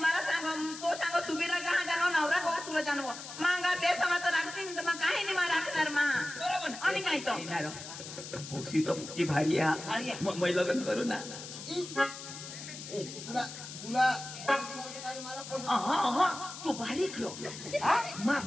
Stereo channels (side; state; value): left; noise; hiss, 11 dB below the sound